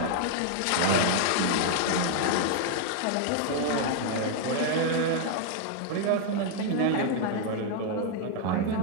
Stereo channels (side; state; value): both; different; correlation 0.00